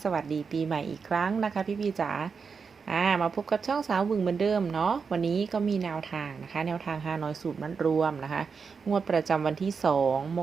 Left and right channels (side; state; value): left; quieter; 5.5 dB